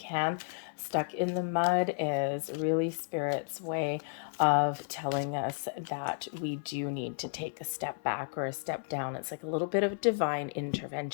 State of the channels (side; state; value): right; silent; digital silence